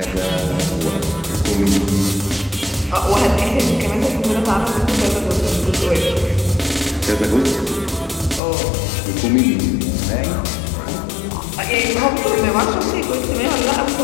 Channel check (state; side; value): drops out; right; at 8.4 s